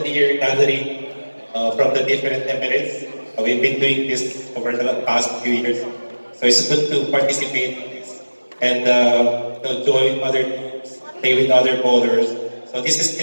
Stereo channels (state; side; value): inverted; both; correlation -1.00